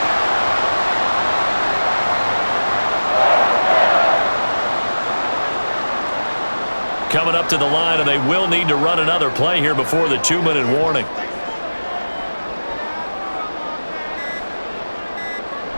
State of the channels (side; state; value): both; inverted; correlation -1.00